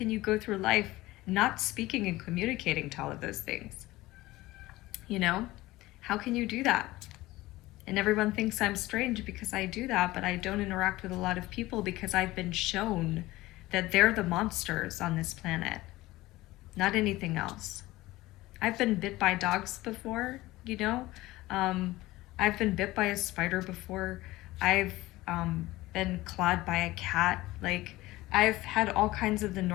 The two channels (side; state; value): right; quieter; 18.4 dB